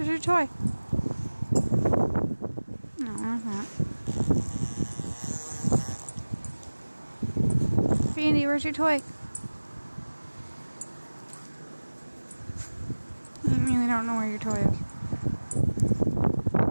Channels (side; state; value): both; inverted; correlation -1.00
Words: toy? No, it's not. Andy, where's your toy? You really don't know where your toy is.